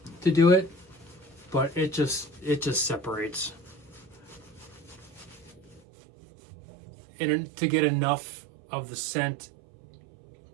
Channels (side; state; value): left; drops out; at 5.8 s